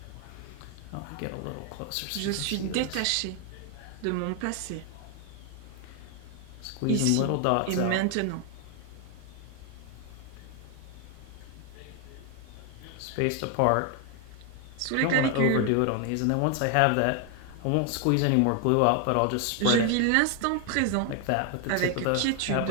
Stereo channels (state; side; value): different; both; correlation 0.01